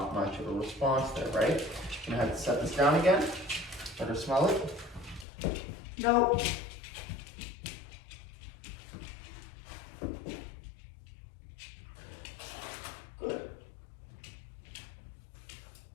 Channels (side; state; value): right; drops out; at 5.2 s